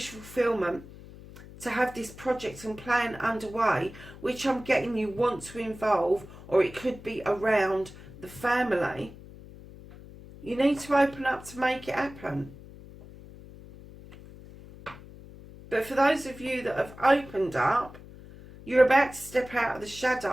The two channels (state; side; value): noise; left; hum, 17 dB below the sound